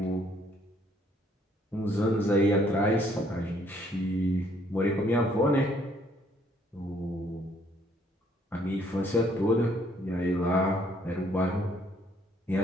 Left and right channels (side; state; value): both; normal; correlation 0.65